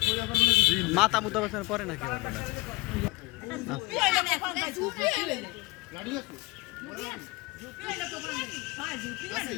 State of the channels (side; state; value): right; quieter; 22.7 dB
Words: মাথা মুদ্দা বসার পরে নাকি